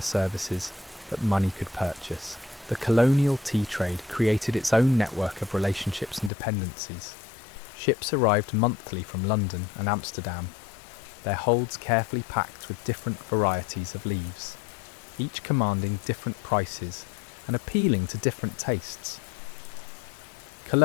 services that money could purchase. The colonial tea trade created its own network of relationships and dependencies. Ships arrived monthly from London and Amsterdam, their holds carefully packed with different varieties of leaves, each commanding different prices and appealing to different tastes.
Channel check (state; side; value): drops out; right; at 6.3 s